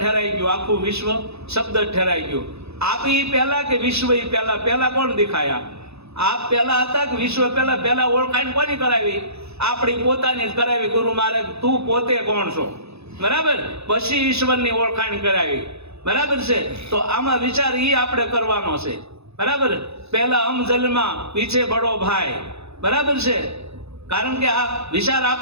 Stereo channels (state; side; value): late; left; 0.79 ms